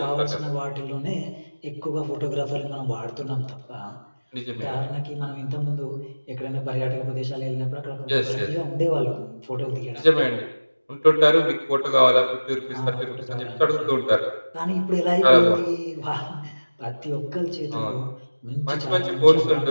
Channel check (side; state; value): both; inverted; correlation -1.00